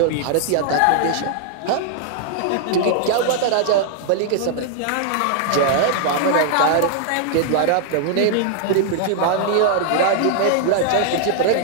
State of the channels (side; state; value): both; different; correlation -0.01